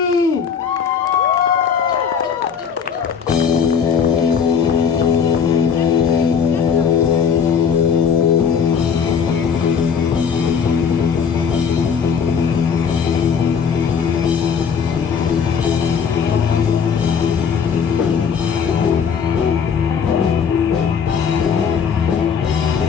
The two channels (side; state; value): right; quieter; 6.8 dB